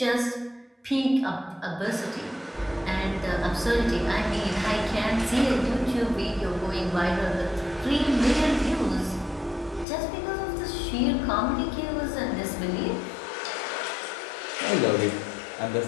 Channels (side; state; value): right; drops out; at 9.9 s